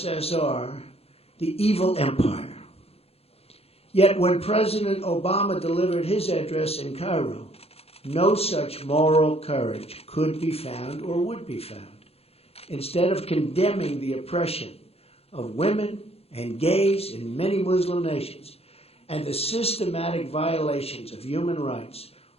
the evil empire. Yet when President Obama delivered his address in Cairo, no such moral courage could be found or would be found. Instead of condemning the oppression of women and gays in many Muslim nations and the systematic violations of human rights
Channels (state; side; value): late; right; 0.29 ms